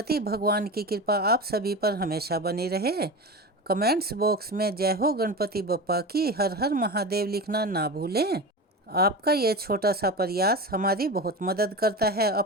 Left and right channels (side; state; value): both; normal; correlation 0.26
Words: भगवान की कृपा आप सभी पर हमेशा बनी रहे। कमेंट्स बॉक्स में जय हो गणपति बप्पा की, हर हर महादेव लिखना ना भूलें। आपका ये छोटा सा प्रयास हमारी बहुत मदद करता है।